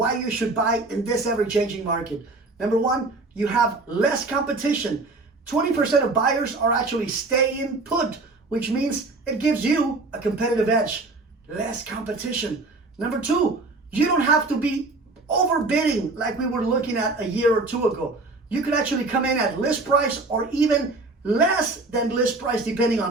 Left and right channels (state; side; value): quieter; left; 3.4 dB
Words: you should buy in this ever-changing market. Number 1, you have less competition. 20% of buyers are actually staying put, which means it gives you a competitive edge. Less competition. Number 2, you don't have to be overbidding like we were looking at a year or 2 ago. You could actually come in at list price or even less than list price depending